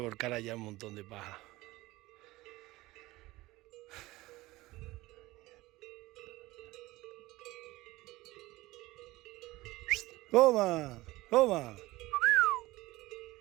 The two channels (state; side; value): quieter; left; 19.2 dB